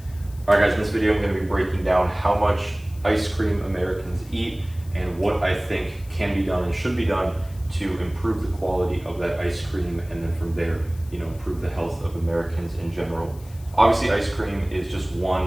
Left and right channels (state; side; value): noise; left; hiss, 24 dB below the sound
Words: right, guys, in this video I'm going to be breaking down how much ice cream Americans eat and what I think can be done and should be done to improve the quality of that ice cream, and then from there, improve the health of Americans in general. Obviously, ice cream is just